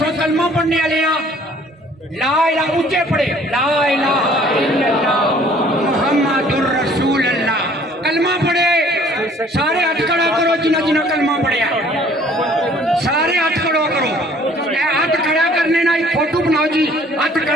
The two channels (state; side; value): normal; both; correlation 0.56